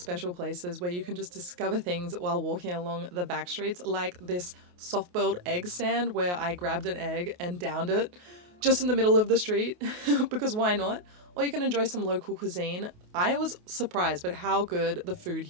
places where you can just discover things while walking along the back streets, like this soft-boiled egg stand where I grabbed an egg and downed it just in the middle of the street, because why not? Or you can enjoy some local cuisine. I was surprised by how good the food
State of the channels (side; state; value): left; late; 28 ms